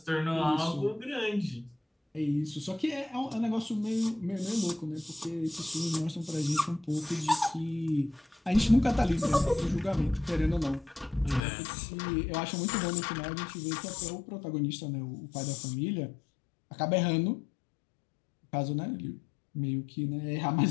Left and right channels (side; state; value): right; drops out; at 11.4 s